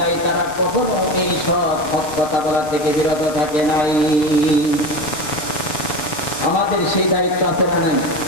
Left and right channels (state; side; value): late; right; 6.7 ms